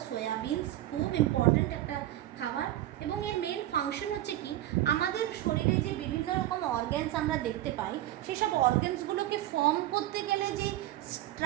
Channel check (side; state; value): left; quieter; 14.5 dB